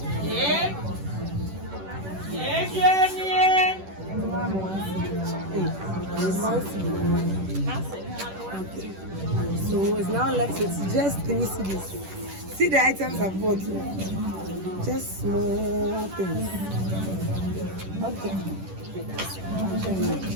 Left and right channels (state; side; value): late; left; 10 ms